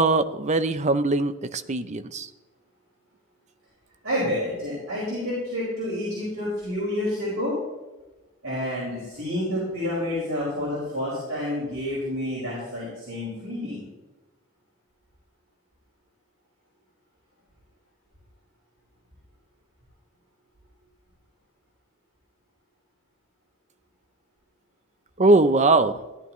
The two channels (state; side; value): normal; both; correlation 0.25